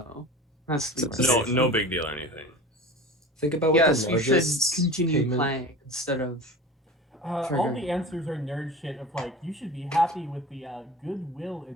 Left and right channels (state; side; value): normal; both; correlation 0.35